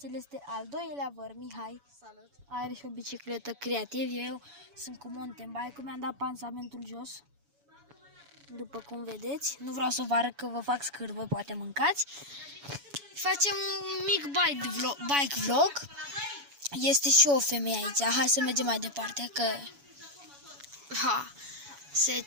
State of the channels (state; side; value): late; left; 7.1 ms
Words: El este al doilea văr, Mihai. Salut. Are și o bicicletă creativ. Eu sunt cu mountain bike-ul, mi-am dat pansamentul jos. După cum vedeți. Nu vreau să vă arăt că vă fac scârbă, poate mâncați. Facem un mic bike vlog. Este și o femeie aici. Hai să mergem mai departe, că se